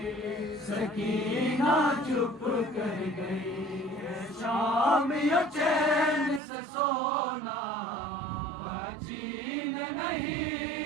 सकीना चुप कर गई। शाम यो चैन से सोना जीन नहीं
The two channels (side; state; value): left; drops out; at 6.4 s